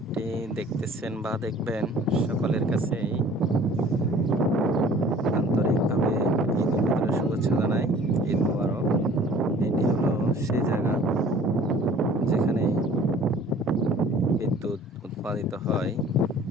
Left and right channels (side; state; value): both; normal; correlation 0.50